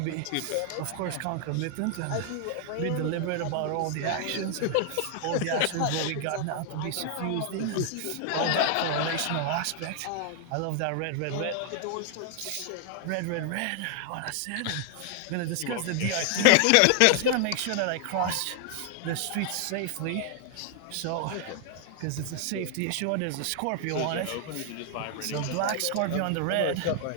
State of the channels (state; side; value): different; both; correlation 0.00